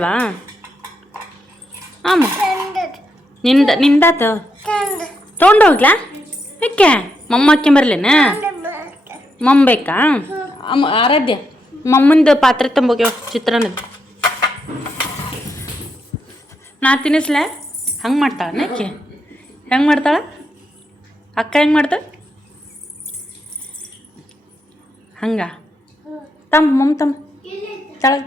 ಅಮ್ಮ, ನಿಂದಾತ ತೊಗೊಂಡೋಗ್ಲಾ? ಯಾಕೆ ಮಮ್ಮ ಹಾಕ್ಯಂಬರ್ಲೇನ? ಮಮ್ಮ ಬೇಕಾ? ಅಮ್ಮ ಆರಾಧ್ಯ, ಮಮ್ಮಂದು ಪಾತ್ರೆ ತುಂಬೋಗ್ಯವ ಚಿತ್ರಾನ್ನದ. ನಾ ತಿನ್ನಿಸ್ಲೆ? ಹಂಗೆ ಮಾಡ್ತಾಳ ಯಾಕೆ? ಹೆಂಗೆ ಮಾಡ್ತಾಳ ಅಕ್ಕ? ಹೆಂಗೆ ಮಾಡ್ತಾಳ ಹಂಗ? ಮಮ್ಮ ತಳಗ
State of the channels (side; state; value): both; normal; correlation 0.81